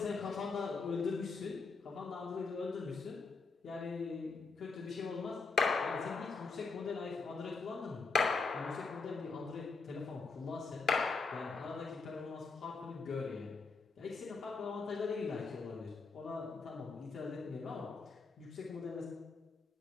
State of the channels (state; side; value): quieter; right; 4.3 dB